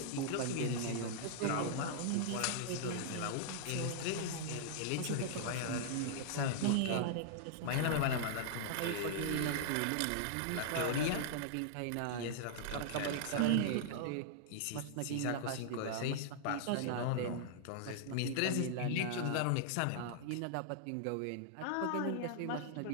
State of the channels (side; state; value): both; different; correlation -0.01